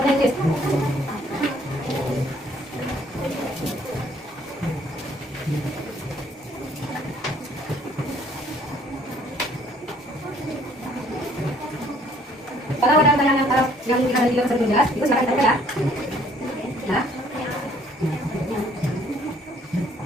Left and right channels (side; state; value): both; normal; correlation 0.61